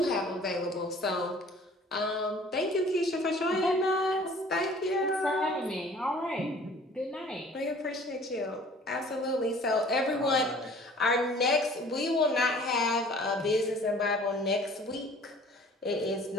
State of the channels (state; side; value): normal; both; correlation 0.50